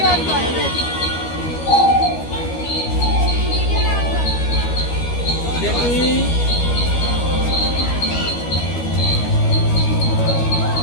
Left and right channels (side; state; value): right; late; 13 ms